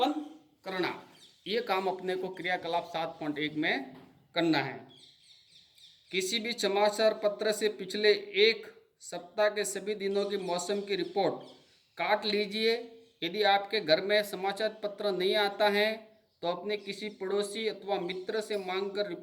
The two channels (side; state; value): both; identical; correlation 1.00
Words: करना। ये काम अपने को क्रियाकलाप 7.1 में करना है। किसी भी समाचार पत्र से पिछले एक सप्ताह के सभी दिनों की मौसम की रिपोर्ट काट लीजिए। यदि आपके घर में समाचार पत्र नहीं आता है तो अपने किसी पड़ोसी अथवा मित्र से मांगकर